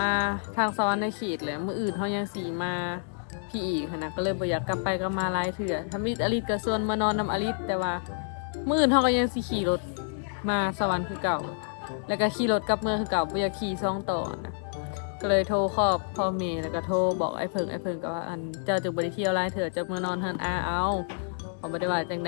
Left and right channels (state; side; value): silent; right; digital silence